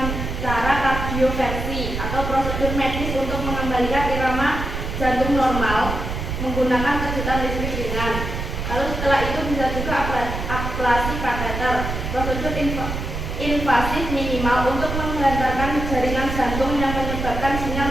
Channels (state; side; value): noise; right; rumble, 4 dB below the sound